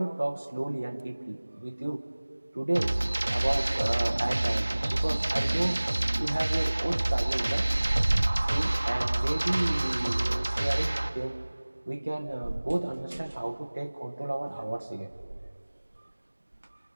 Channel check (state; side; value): inverted; both; correlation -1.00